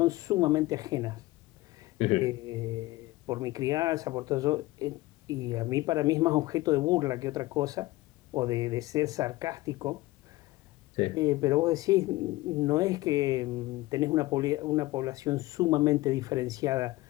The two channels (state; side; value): quieter; right; 19.1 dB